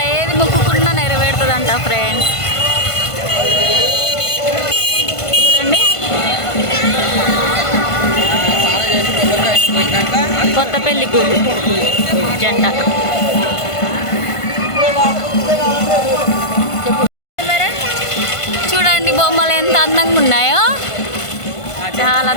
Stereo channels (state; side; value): late; right; 1.5 ms